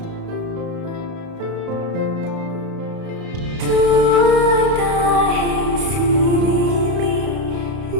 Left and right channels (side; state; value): left; late; 32 ms